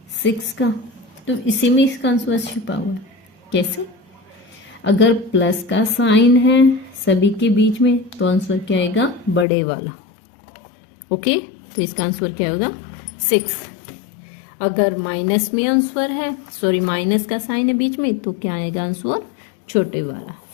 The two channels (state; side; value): drops out; right; at 9.5 s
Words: 6 का, तो इसी में इसका आंसर छुपा हुआ है। कैसे, अगर प्लस का साइन है सभी के बीच में तो आंसर क्या आएगा बड़े वाला। ओके, तो इसका आंसर क्या होगा 6। अगर माइनस में आंसर है, सॉरी माइनस का साइन है बीच में, तो क्या आएगा आंसर छोटे वाला